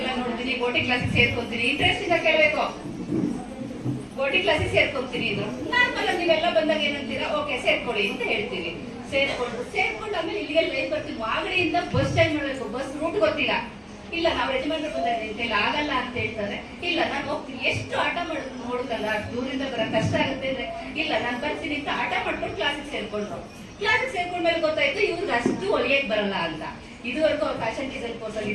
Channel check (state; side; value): identical; both; correlation 1.00